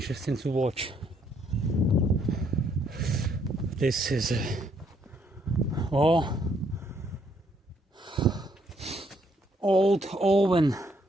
to watch. This is a old oven,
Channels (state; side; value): normal; both; correlation 0.70